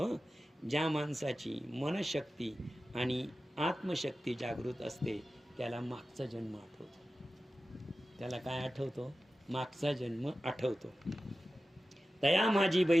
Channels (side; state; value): both; normal; correlation 0.94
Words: ज्या माणसाची मनशक्ती आणि आत्मशक्ती जागृत असते त्याला मागचा जन्म आठवतो. त्याला काय आठवतो? मागचा जन्म आठवतो. तया माझी